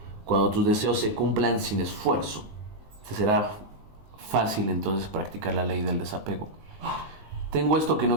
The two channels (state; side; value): late; left; 19 ms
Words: Cuando tus deseos se cumplan sin esfuerzo, te será fácil entonces practicar la ley del desapego. Tengo esto que no